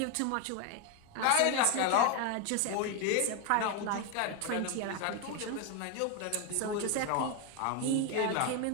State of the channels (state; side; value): different; both; correlation 0.01